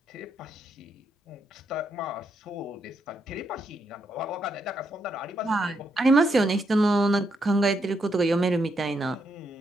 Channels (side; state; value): both; normal; correlation 0.78